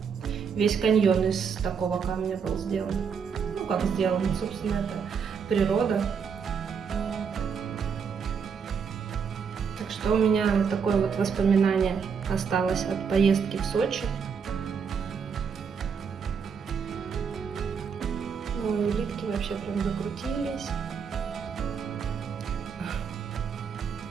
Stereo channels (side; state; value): left; quieter; 6.4 dB